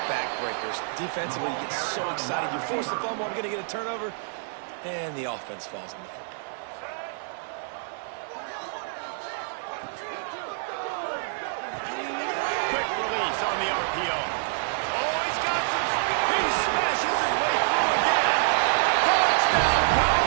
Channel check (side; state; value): left; silent; digital silence